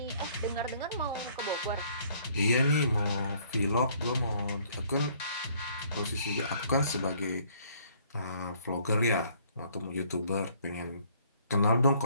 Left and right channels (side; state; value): both; inverted; correlation -0.61